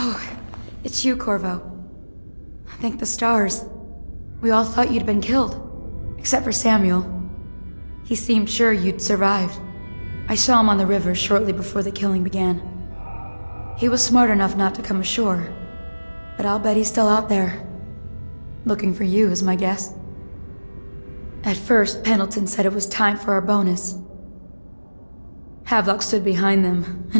it's you, Corvo. Thank the stars. We all thought you'd been killed. Except for Samuel. He seemed sure you'd survived. I saw him on the river shortly before the killing began. He was smart enough not to come ashore. But I'll bet he's still out there. Looking for you, is my guess. At first, Pendleton said it was time for our bonus. Havelock stood behind them,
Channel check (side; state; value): both; inverted; correlation -1.00